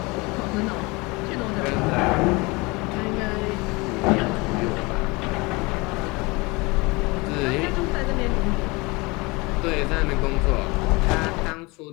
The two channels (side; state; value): right; quieter; 25.4 dB